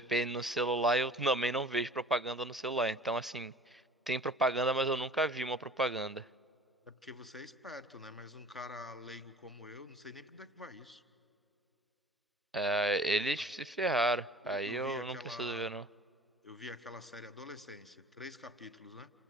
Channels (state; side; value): normal; both; correlation 0.45